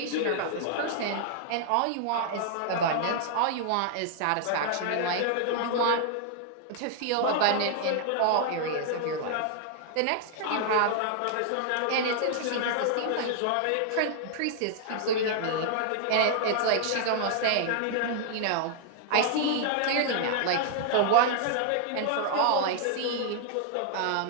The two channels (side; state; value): both; different; correlation -0.01